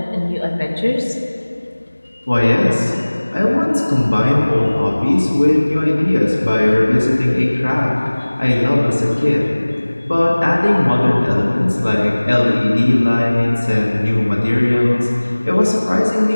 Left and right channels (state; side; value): inverted; both; correlation -1.00